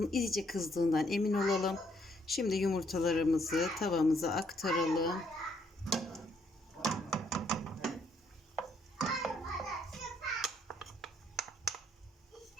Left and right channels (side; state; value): both; normal; correlation 0.70